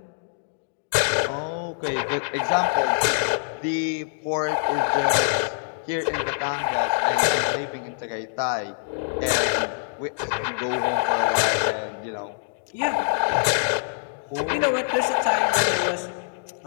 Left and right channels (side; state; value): right; silent; digital silence